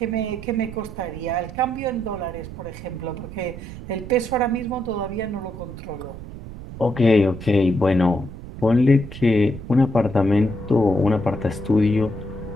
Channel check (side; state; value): right; noise; rumble, 12 dB below the sound